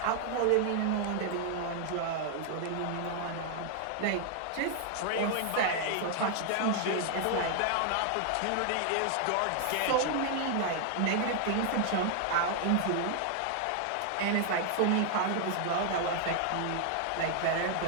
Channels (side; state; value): both; different; correlation 0.00